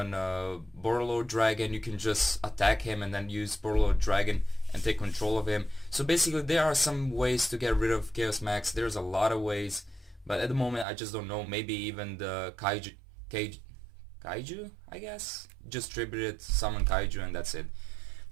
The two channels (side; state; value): left; drops out; at 10.9 s